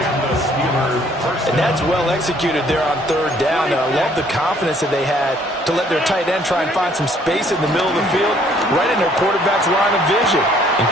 And that's well executed there on third down. And I love the confidence that they had to let their tight end try and find some space in the middle of the field, right in their quarterback's line of vision. And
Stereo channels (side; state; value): both; normal; correlation 0.62